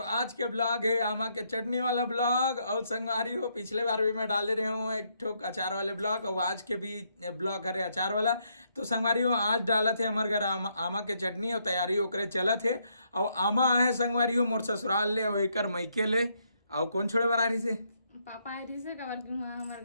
के ब्लॉग है आमा के चटनी वाला ब्लॉग। और संगवारी हो, पिछले बार भी मैं डाले रहे हूँ एक ठोक अचार वाले ब्लॉग, और आज के भी ब्लॉग है अचार वाला। तो संगवारी हो, आज डाला थे हमारे घर आमा के चटनी और तैयारी ओकरे चला थे। और आमा है संगवारी हो मोर ससुराल ले और एकर मैके ले। और कौन छोड़े बरारी से पापा आई से कवर हमारे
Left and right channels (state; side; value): inverted; both; correlation -0.75